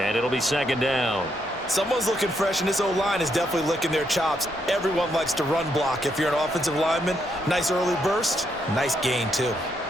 it'll be second down. Someone's looking fresh, and this O-line is definitely licking their chops. Everyone likes to run block. If you're an offensive lineman, nice early burst, nice gain too.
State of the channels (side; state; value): both; normal; correlation 0.77